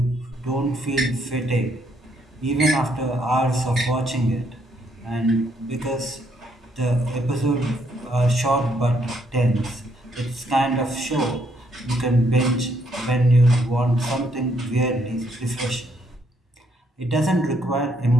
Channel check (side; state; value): both; normal; correlation 0.72